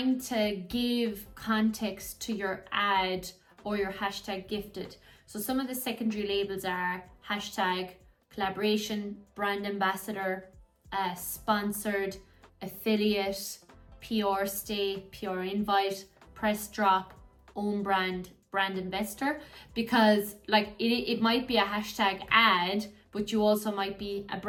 to give context to your ad or your hashtag gifted. So some of the secondary labels are hashtag, collaboration, brand ambassador, sponsored, affiliate, PR stay, PR invite, press drop, own brand, brand investor, because like it might be a hashtag ad, but you also might be a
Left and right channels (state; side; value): identical; both; correlation 1.00